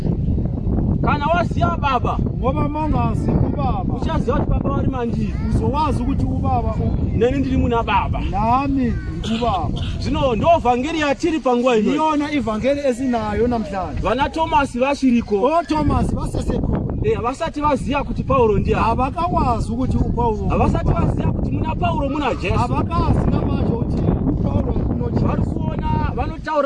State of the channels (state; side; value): identical; both; correlation 1.00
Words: kana waziya baba ngoba mongazi ubaba uchaziwa ukuthi baba wari manjini uzowazi ukuthi ubaba neni ndiri muna baba nami ubaba zvino ndo vhangeri yatiri panguva ino iyona ivhangeri esinayo namhlanje vana Thomas vachiriko o Thomas vasesekhona havasati vaziya kuti Paulo ndiani havakawazi ukuthi uPaulo havasati vaziya kuti muna Paulo muna Jesu havakazi namanje kuti uPaulo unojesu vari kuona